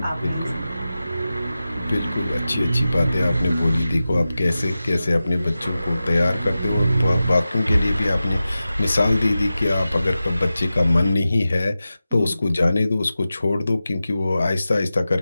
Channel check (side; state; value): both; inverted; correlation -0.94